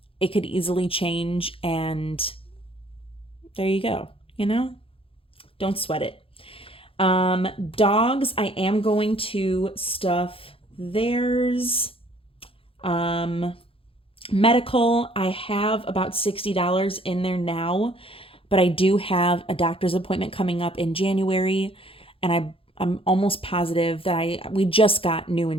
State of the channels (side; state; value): right; late; 0.27 ms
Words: It could easily change, and there you go, Don't sweat it. Dogs, I am going to stuff theirs. Medical, I have about $60 in there now, but I do have a doctor's appointment coming up in January, and I'm almost positive that we just got new